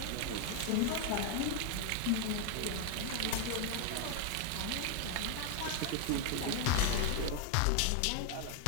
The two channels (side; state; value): both; different; correlation 0.00